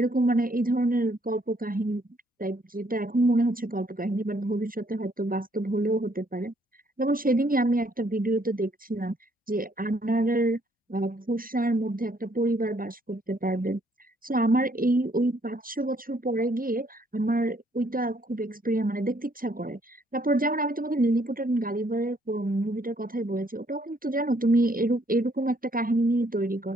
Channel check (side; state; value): both; normal; correlation 0.67